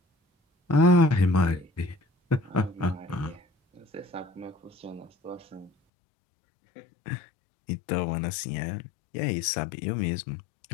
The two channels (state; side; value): drops out; right; at 5.7 s